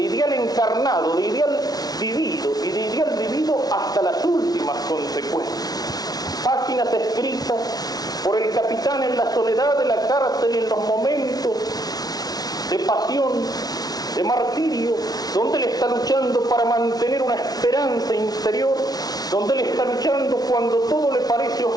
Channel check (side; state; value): right; late; 0.19 ms